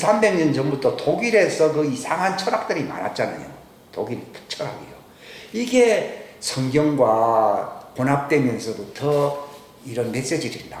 전부터 독일에서 그 이상한 철학들이 많았잖아요. 독일 철학이요. 이게 성경과 혼합되면서부터 이런 메시지들이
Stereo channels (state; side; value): identical; both; correlation 1.00